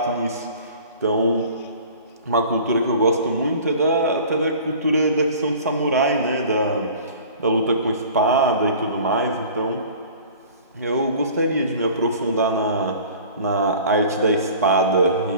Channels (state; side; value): inverted; both; correlation -0.45